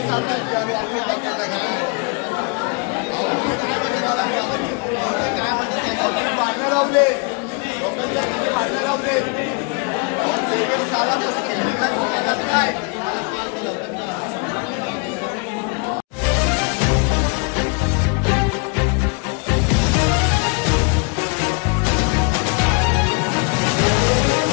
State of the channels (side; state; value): right; quieter; 34.0 dB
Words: भांडणं लावले लोकांच्या भांडणं लावले काय